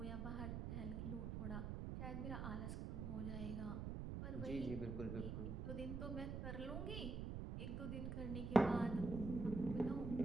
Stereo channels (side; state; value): right; noise; rumble, 3 dB below the sound